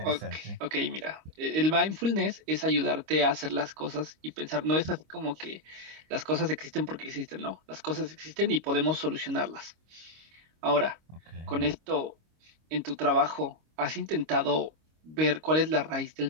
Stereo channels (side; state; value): left; late; 25 ms